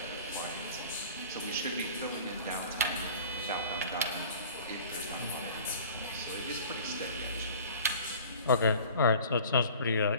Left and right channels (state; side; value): inverted; both; correlation -0.45